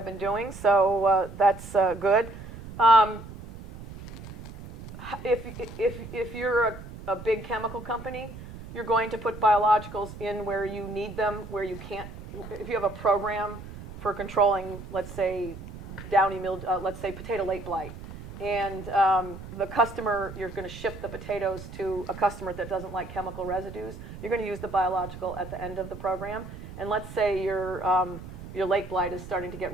been doing, so that's good. If you're a big chemical company, you're going to put biologicals in where you need them, where you can't. If you have a program for controlling, let's say, downy mildew, let's say potato late blight, and the customer, you're going to ship the potatoes to a customer that doesn't like chemical residues, you're going to use the biological at the end of the program. And let's say your late blight is starting to get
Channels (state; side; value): noise; right; rumble, 13 dB below the sound